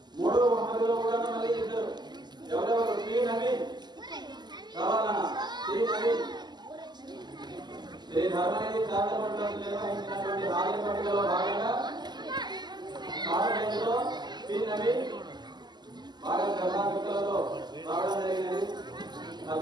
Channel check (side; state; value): left; late; 0.21 ms